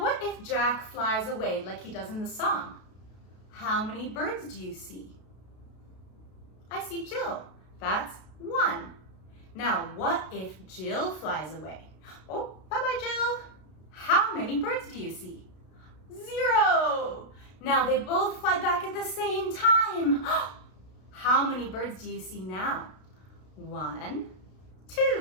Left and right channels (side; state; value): right; late; 32 ms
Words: if Jack flies away like he does in the song? How many birds do you see? I see Jill. That's 1. Now what if Jill flies away? Oh, bye-bye, Jill. How many birds do you see? 0. Now they both fly back at the same time. How many birds do you see now? 1,